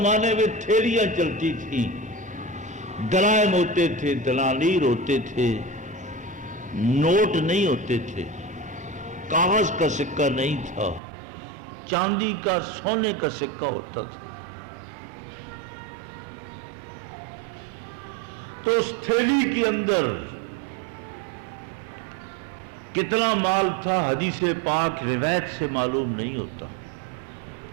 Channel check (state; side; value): drops out; left; at 11.0 s